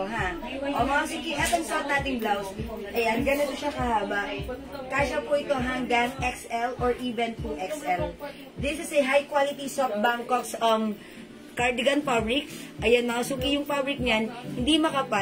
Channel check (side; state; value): both; identical; correlation 1.00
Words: ha. Mga sige, etong suot nating blouse. Ayan, ganito siya kahaba. Kasya po ito hanggang XL or even 2XL. This is a high quality soft Bangkok's cardigan fabric. Ayan, mga suki, yung fabric niyan, hindi